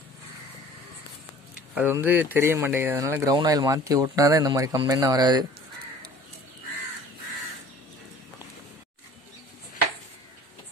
அது வந்து தெரிய மாட்டேங்குது. அதனால் க்ரௌன் ஆயில் மாற்றி ஓட்டினா தான் இந்த மாதிரி கம்ப்ளைண்ட்லாம் வராது.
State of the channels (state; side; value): normal; both; correlation 0.47